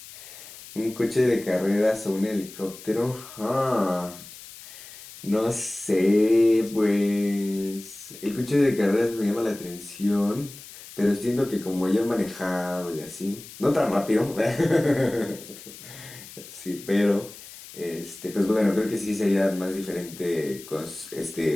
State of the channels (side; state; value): left; noise; hiss, 16 dB below the sound